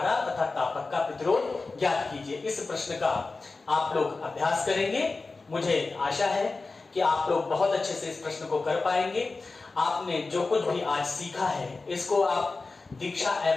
तथा तापक का प्रतिरोध ज्ञात कीजिए। इस प्रश्न का आप लोग अभ्यास करेंगे। मुझे आशा है कि आप लोग बहुत अच्छे से इस प्रश्न को कर पाएंगे। आपने जो कुछ भी आज सीखा है इसको आप दीक्षा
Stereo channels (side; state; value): right; quieter; 3.8 dB